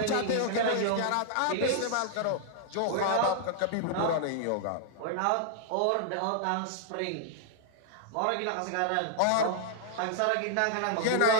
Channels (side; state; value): both; different; correlation -0.01